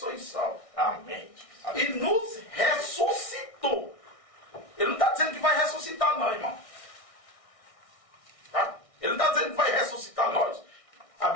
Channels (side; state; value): right; late; 1.6 ms